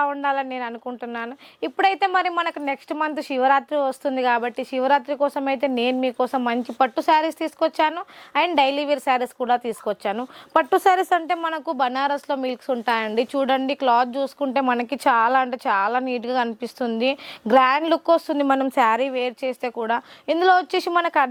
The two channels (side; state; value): both; identical; correlation 1.00